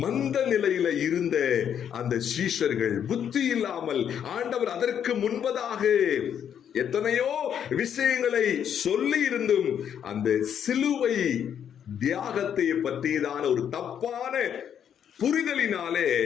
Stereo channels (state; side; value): quieter; right; 8.8 dB